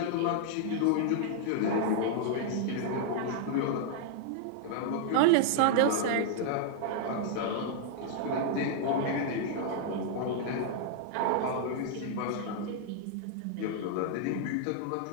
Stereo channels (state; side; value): different; both; correlation -0.01